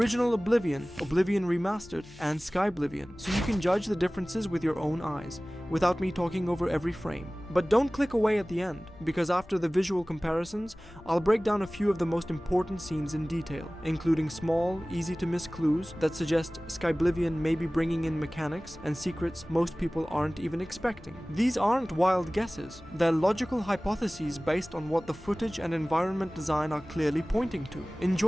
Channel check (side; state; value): left; noise; hum, 22 dB below the sound